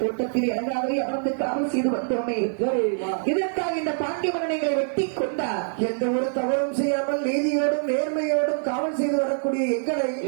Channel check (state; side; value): silent; left; digital silence